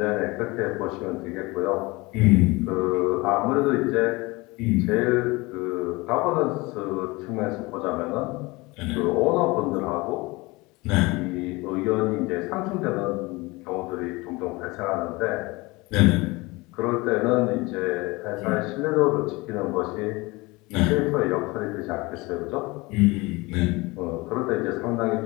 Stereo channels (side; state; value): right; quieter; 23.4 dB